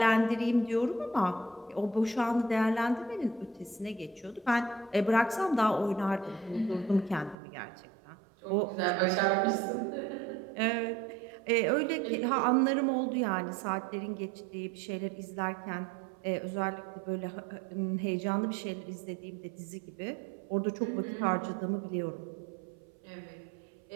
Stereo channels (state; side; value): drops out; left; at 7.4 s